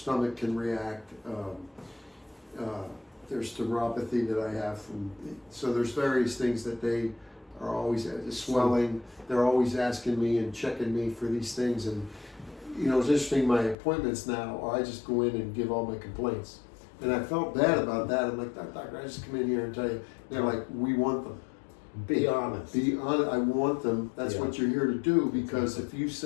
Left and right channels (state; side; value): drops out; right; at 13.8 s